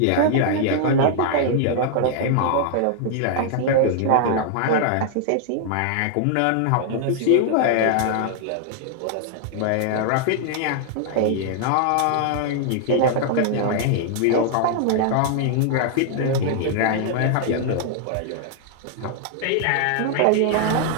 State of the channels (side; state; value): both; different; correlation -0.01